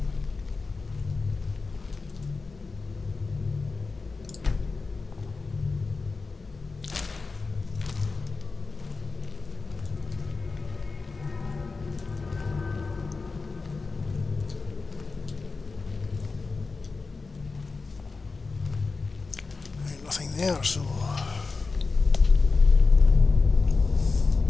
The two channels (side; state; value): right; quieter; 4.2 dB